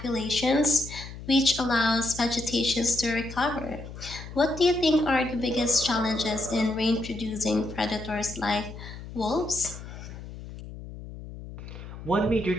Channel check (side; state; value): left; noise; hum, 12 dB below the sound